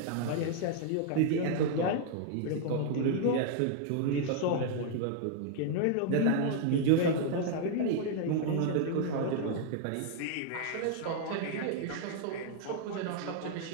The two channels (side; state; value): both; different; correlation 0.00